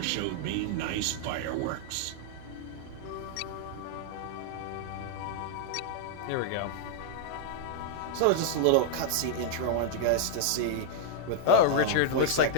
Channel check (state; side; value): different; both; correlation -0.01